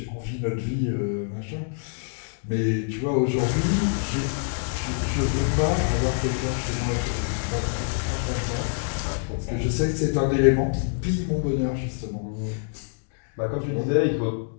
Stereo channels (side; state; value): right; silent; digital silence